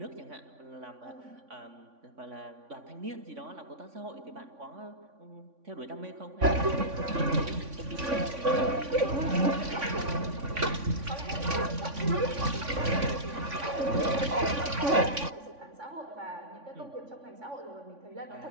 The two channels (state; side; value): late; left; 3.5 ms